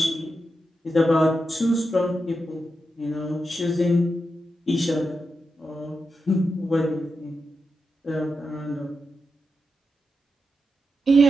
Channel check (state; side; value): normal; both; correlation 0.87